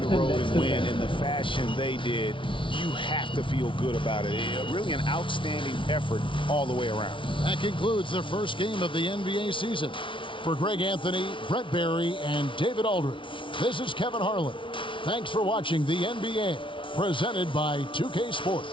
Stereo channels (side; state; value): right; late; 0.25 ms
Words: road and win in the fashion they did, you have to feel good about it. Really an outstanding effort all the way around. That concludes the first game of the NBA season. For Greg Anthony, Brett Barry, and David Aldridge, this is Kevin Harlan. Thanks for watching the NBA, presented by 2K